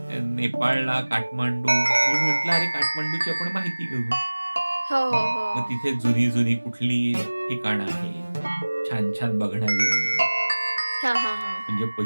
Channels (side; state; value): both; inverted; correlation -1.00